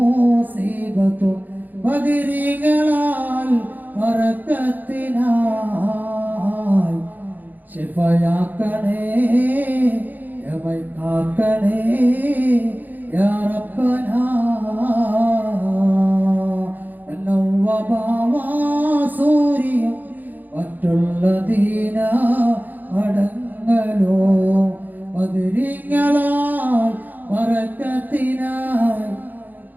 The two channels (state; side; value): late; left; 0.085 ms